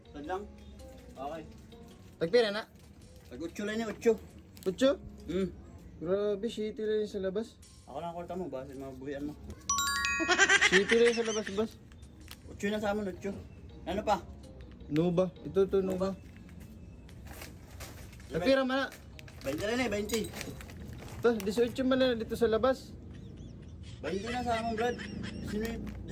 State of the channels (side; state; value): both; identical; correlation 1.00